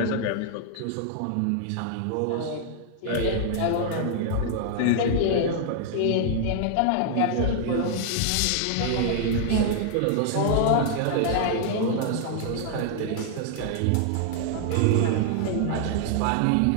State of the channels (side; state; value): both; different; correlation 0.00